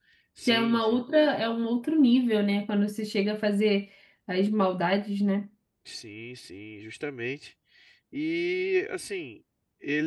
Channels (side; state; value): both; identical; correlation 1.00